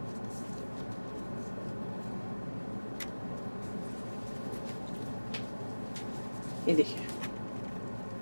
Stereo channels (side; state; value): both; inverted; correlation -1.00